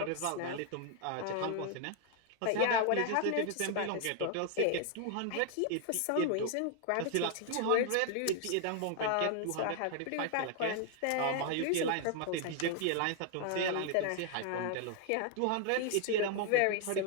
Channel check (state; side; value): different; both; correlation 0.00